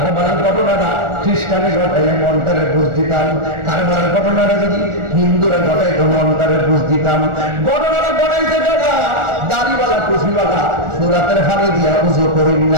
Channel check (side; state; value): left; late; 1.4 ms